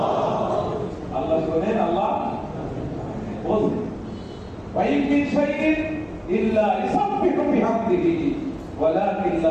আল্লাহ শোনেন, আল্লাহ বলেন وَإِن مِّن شَيْءٍ إِلَّا يُسَبِّحُ بِحَمْدِهِ وَلَكِن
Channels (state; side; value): identical; both; correlation 1.00